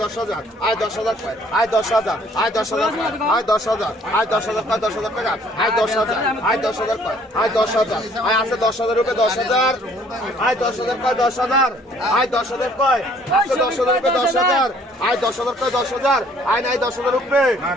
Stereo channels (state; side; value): normal; both; correlation 0.59